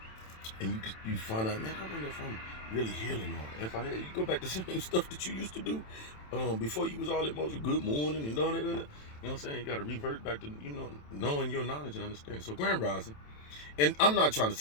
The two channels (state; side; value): late; right; 27 ms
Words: and you find out, man, I wonder if I'm really healing, or if I had, you go back to the same stuff that you used to do, before you was all emotional. Good morning and all that. You know what I'm saying? You got to revert back to knowing your knowledge and understanding. So grand rising, and I'm not trying to